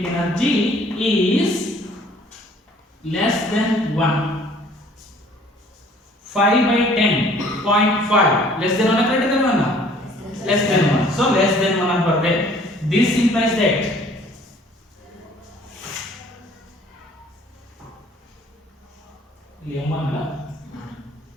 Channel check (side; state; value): both; normal; correlation 0.55